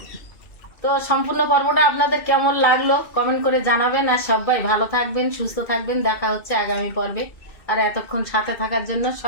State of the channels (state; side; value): late; right; 2.5 ms